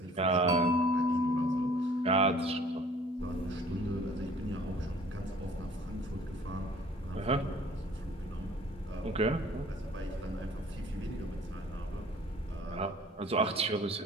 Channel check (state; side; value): normal; both; correlation 0.52